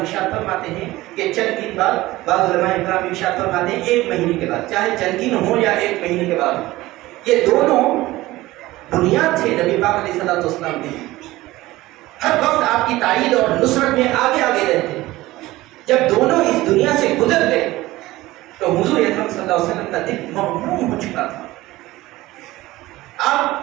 فرماتے ہیں کہ چند دن بعد، بعض علماء اکرام ارشاد فرماتے ہیں 1 مہینے کے بعد، چاہے چند دن ہو یا 1 مہینے کے بعد. یہ دونوں بنیاد تھے نبی پاک علیہ الصلوۃ والسلام کے. ہر وقت آپ کی تائید اور نصرت میں آگے رہتے. جب دونوں اس دنیا سے گزر گئے تو حضور اکرم صلی اللہ علیہ وسلم کا دل مغموم ہو چکا تھا.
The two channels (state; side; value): quieter; left; 18.0 dB